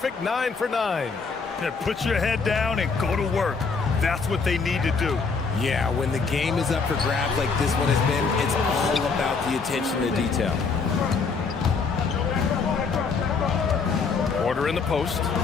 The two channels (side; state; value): right; quieter; 4.9 dB